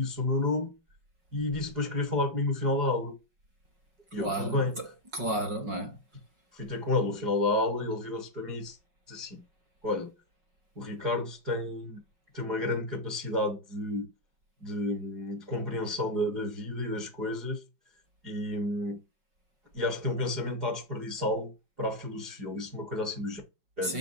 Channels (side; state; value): left; late; 5.4 ms